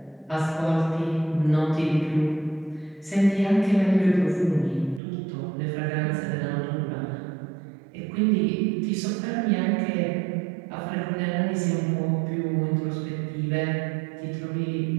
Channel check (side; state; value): left; drops out; at 5.0 s